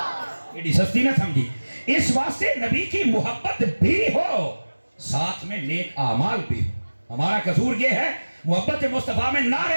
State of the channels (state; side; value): inverted; both; correlation -1.00